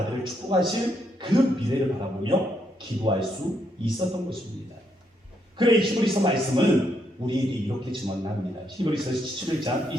축복하신 그 미래를 바라보며 기도할 수 있었던 것입니다. 그래 히브리서 말씀은 우리에게 이렇게 증언합니다. 히브리서 11장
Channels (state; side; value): normal; both; correlation 0.77